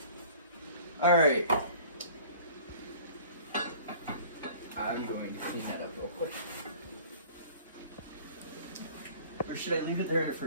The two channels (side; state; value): both; inverted; correlation -0.48